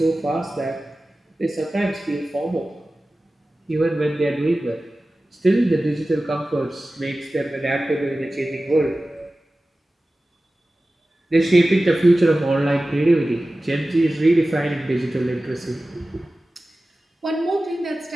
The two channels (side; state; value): both; normal; correlation 0.96